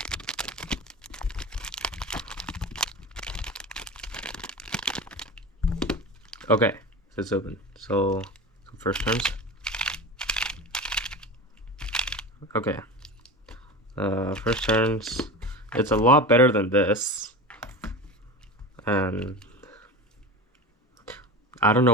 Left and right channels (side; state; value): both; normal; correlation 0.29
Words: Okay, so it's open. So first turns. Okay. First turns. It's a lot better than this. And I don't